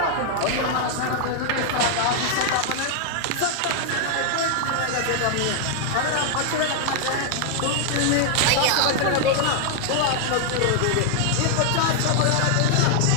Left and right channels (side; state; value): both; different; correlation 0.00